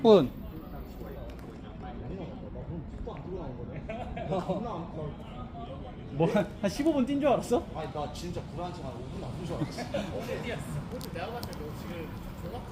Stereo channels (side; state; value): both; identical; correlation 1.00